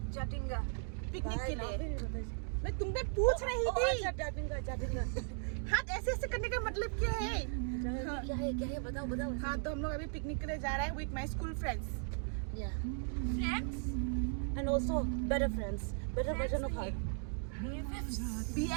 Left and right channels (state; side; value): silent; left; 53 dB below the other